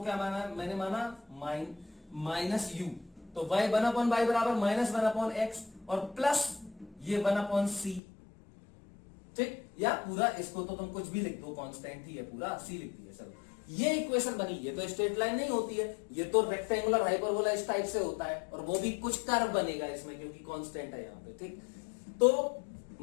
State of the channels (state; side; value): drops out; right; at 8.0 s